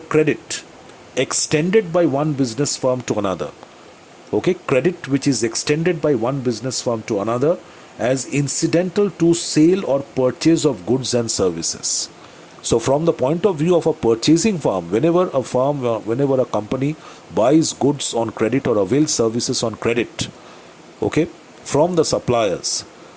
extended by one business firm to another. Okay, credit which is extended by one business firm to another as incidental to sale or purchase of goods and services. So from the point of view of a purchasing firm, whenever a company buys goods on credit or avails services on credit, okay, from the suppliers,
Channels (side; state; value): both; identical; correlation 1.00